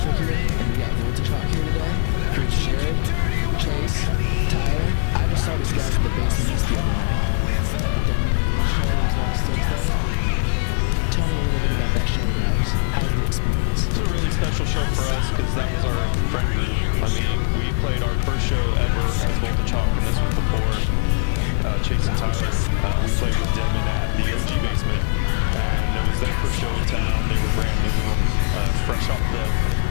here, and we got Voltagehawk here today. Here's Jared, Chase, Tyler. I just saw these guys at the Basement East the other night at the Denman release show. It was last Thursday. Tell me a little bit about that show, guys. How was the experience? It was a really special show for us because that was our friend group. I mean, we played our first show ever as Voltagehawk, and this was before Chase and Tyler. We played with Denman at the OG Basement, and it was their first show in town. They were brand new, fresh off the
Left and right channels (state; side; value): silent; right; digital silence